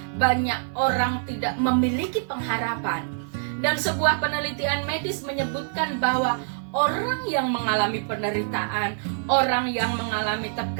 banyak orang tidak memiliki pengharapan. Dan sebuah penelitian medis menyebutkan bahwa orang yang mengalami penderitaan, orang yang mengalami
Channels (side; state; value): left; silent; 62 dB below the other